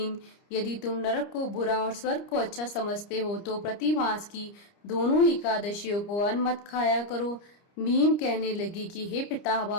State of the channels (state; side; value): late; right; 30 ms